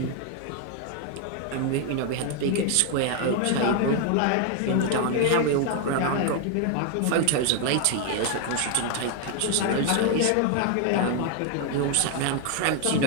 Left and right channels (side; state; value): both; different; correlation 0.00